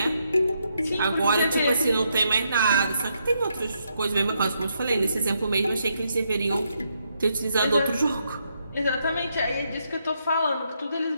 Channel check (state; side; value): inverted; both; correlation -0.78